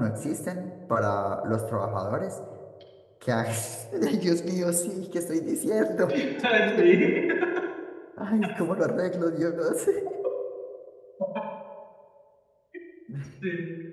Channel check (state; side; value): identical; both; correlation 1.00